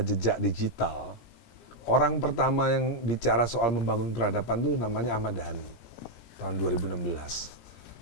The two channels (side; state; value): right; late; 17 ms